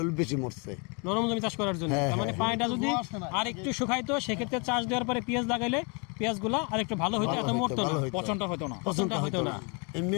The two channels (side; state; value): right; quieter; 33.5 dB